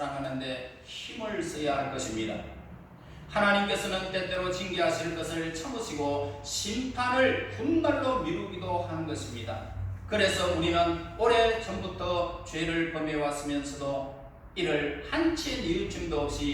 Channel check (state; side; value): identical; both; correlation 1.00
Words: 힘을 써야 할 것입니다. 하나님께서는 때때로 징계하실 것을 참으시고 심판을 훗날로 미루기도 하는 것입니다. 그래서 우리는 오래전부터 죄를 범해왔으면서도 이를 한치의 뉘우침도